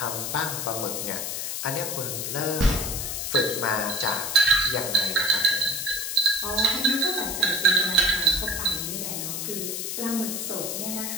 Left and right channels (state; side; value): noise; left; hiss, 3 dB below the sound